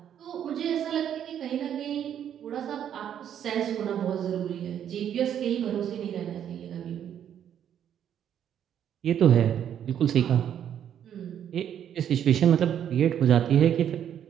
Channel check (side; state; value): left; quieter; 9.6 dB